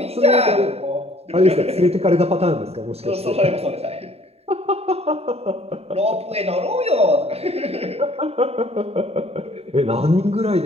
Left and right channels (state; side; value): late; left; 0.30 ms